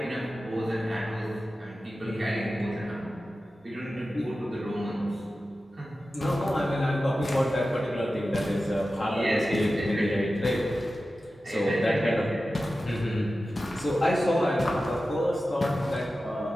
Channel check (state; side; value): normal; both; correlation 0.94